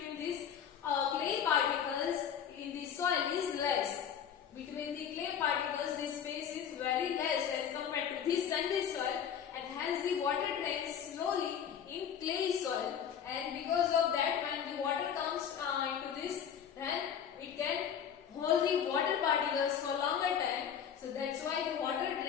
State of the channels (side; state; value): right; quieter; 8.3 dB